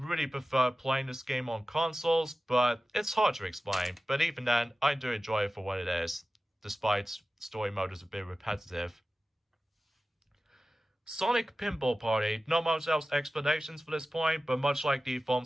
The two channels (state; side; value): normal; both; correlation 0.95